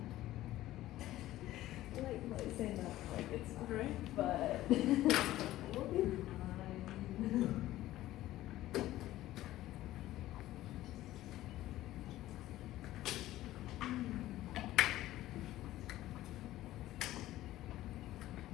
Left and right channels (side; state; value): right; quieter; 15.1 dB